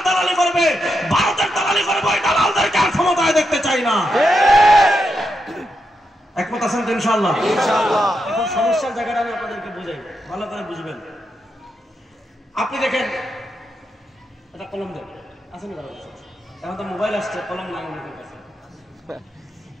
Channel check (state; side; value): normal; both; correlation 0.84